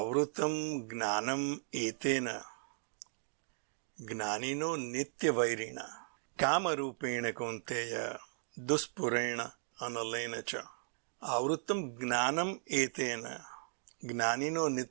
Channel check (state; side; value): silent; left; digital silence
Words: gnanam etena gnanino nitya vairina kama rupena kunteya duspurena analena cha. Avrutam gnanam etena gnanino